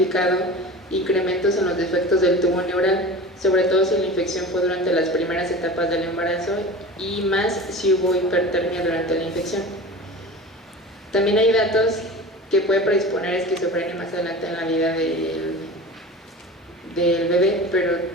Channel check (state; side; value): normal; both; correlation 0.34